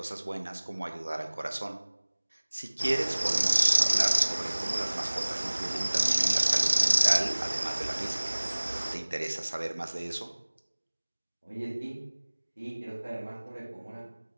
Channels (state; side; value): inverted; both; correlation -1.00